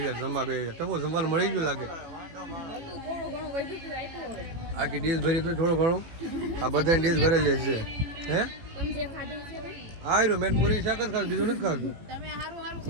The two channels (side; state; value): left; late; 18 ms